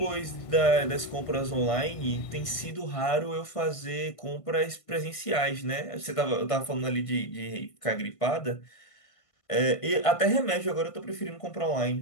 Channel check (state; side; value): late; right; 1.5 ms